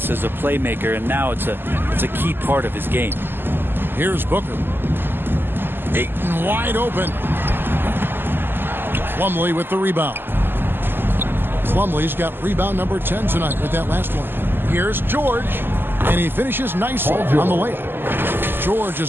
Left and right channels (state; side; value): late; left; 0.098 ms